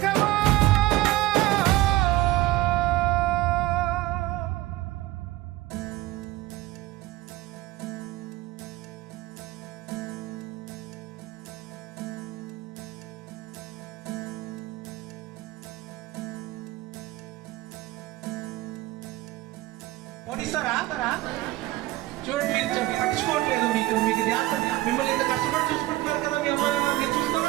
చూడండి మీరు పట్టించుకోవట్లేదు మీకు మిమ్మల్ని ఇంత కష్టపడి చూసుకుంటున్నారు కదా మీ అమ్మ మీరు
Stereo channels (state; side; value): quieter; left; 17.3 dB